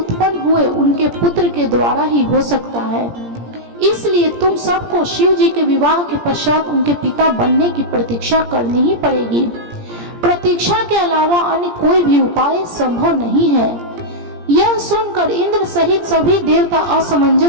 हुए उनके पुत्र के द्वारा ही हो सकता है। इसलिए तुम सबको शिव जी के विवाह के पश्चात उनके पिता बनने की प्रतीक्षा करनी ही पड़ेगी। प्रतीक्षा के अलावा अन्य कोई भी उपाय संभव नहीं है। यह सुनकर इंद्र सहित सभी देवता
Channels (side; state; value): left; late; 17 ms